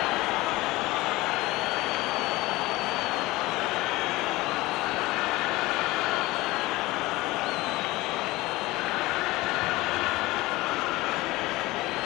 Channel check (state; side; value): quieter; right; 19.9 dB